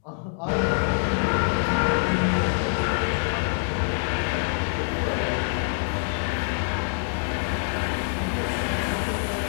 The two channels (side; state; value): right; silent; digital silence